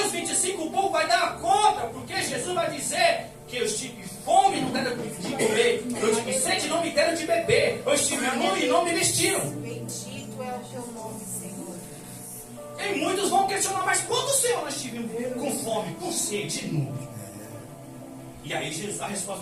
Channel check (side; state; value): both; identical; correlation 1.00